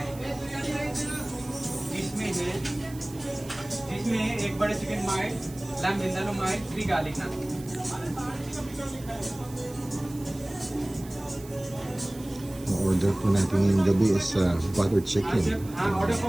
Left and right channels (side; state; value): right; noise; hiss, 19 dB below the sound